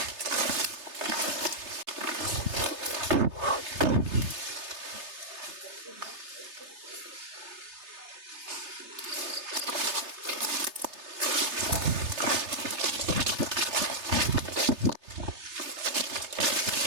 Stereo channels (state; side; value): late; left; 3.3 ms